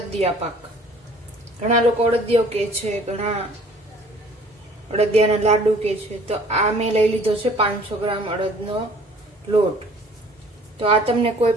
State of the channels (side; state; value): both; normal; correlation 0.53